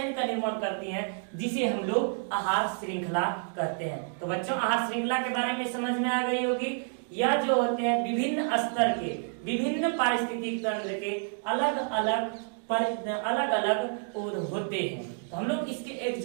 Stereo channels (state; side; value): silent; left; 58 dB below the other